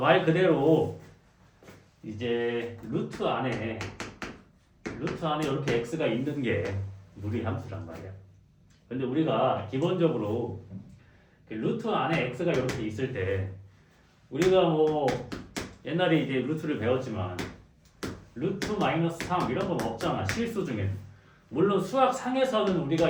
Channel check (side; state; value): both; identical; correlation 1.00